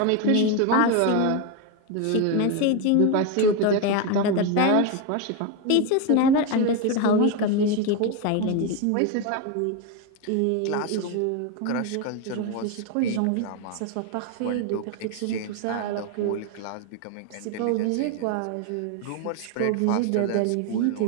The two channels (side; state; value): both; different; correlation 0.02